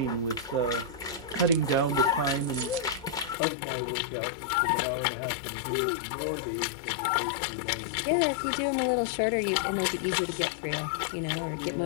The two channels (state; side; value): drops out; right; at 3.4 s